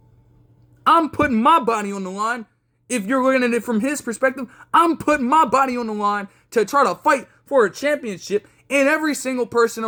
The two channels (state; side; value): identical; both; correlation 1.00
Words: I'm putting my body on the line. If you're looking at it from his perspective, I'm putting my body on the line to try to fight for a championship, and every single person